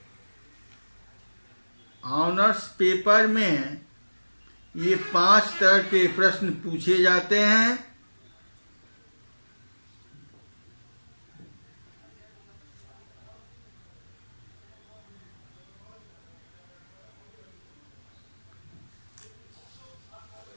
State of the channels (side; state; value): both; inverted; correlation -1.00